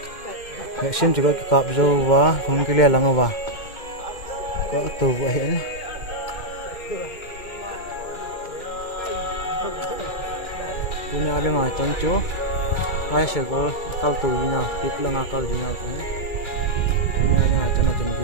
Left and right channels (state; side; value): late; right; 2.1 ms